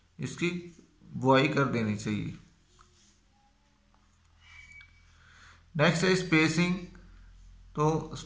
इसकी बुआई कर देनी चाहिए। नेक्स्ट है स्पेसिंग। तो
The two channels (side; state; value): both; identical; correlation 1.00